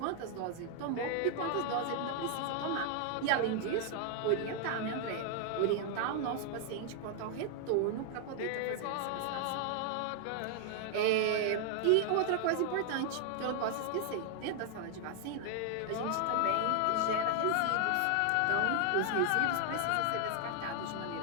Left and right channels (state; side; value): different; both; correlation 0.00